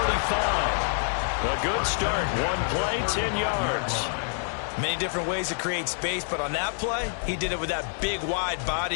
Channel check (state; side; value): silent; right; digital silence